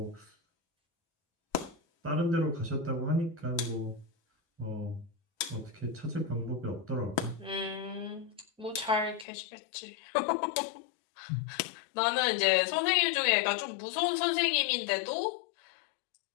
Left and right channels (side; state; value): right; drops out; at 9.2 s